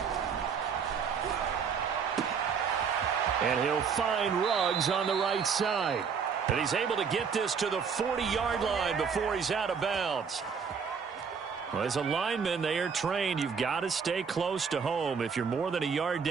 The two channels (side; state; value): left; quieter; 6.2 dB